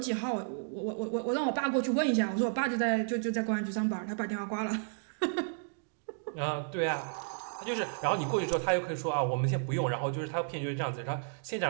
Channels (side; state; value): left; silent; digital silence